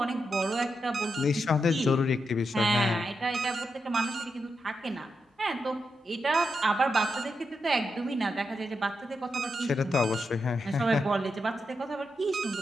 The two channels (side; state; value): both; normal; correlation 0.85